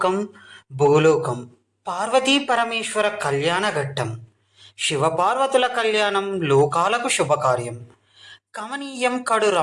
భూలోకం. పార్వతీ పరమేశ్వర కళ్యాణ ఘట్టం. శివపార్వతుల కళ్యాణం లోకాలకు శుభకార్యం. కమనీయం కడు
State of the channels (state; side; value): identical; both; correlation 1.00